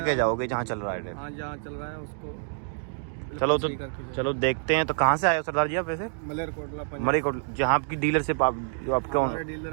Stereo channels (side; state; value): left; silent; digital silence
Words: जाओगे जहाँ चल रहा है। हाँ, जहाँ चल रहा है उसको चलो तो चलो देखते हैं। तो कहाँ से आए हो सरदार जी आप? वैसे मलेरकोटला पंजाब। मलेरकोटला, जहाँ आपकी डीलरशिप आप जो आपके हमारे डीलर